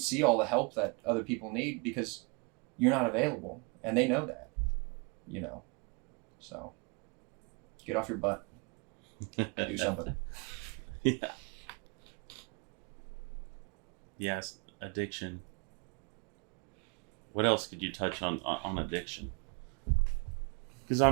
see all the help that other people need because you're not available. And they know that, you know. So get off your butt. Do something. Yeah. Yes, addiction. What else could you touch on addiction?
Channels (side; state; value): left; quieter; 31.7 dB